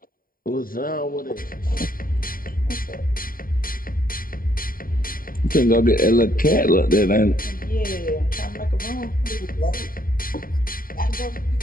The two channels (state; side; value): late; right; 0.41 ms